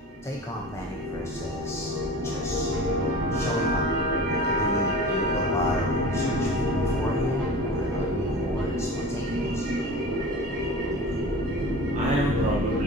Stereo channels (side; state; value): both; normal; correlation 0.36